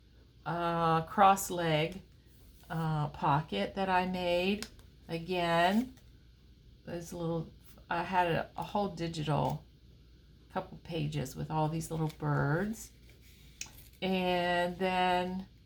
cross leg pocket that I made. Again, there's I had a whole digital couple pages with all these little birds. And then,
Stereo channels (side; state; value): both; identical; correlation 1.00